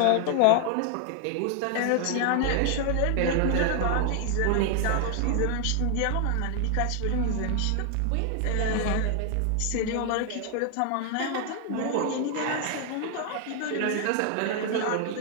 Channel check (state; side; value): different; both; correlation 0.00